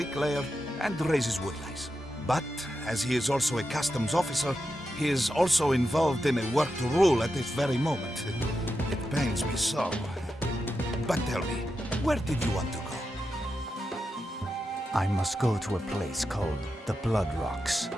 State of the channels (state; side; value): normal; both; correlation 0.88